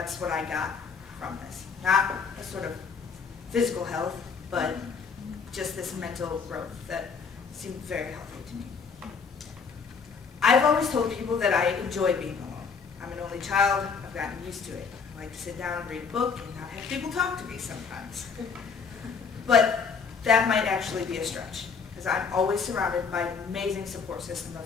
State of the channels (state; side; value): quieter; right; 5.7 dB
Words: what I got from this. Not a sort of physical health, but just this mental growth that seemed very healthy to me. I've always told people that I enjoy being alone. I'm an only child. I've gotten used to it. I like to sit down and read a book and not have people talk to me sometimes. But that might actually be a stretch, because I'm always surrounded by an amazing support system of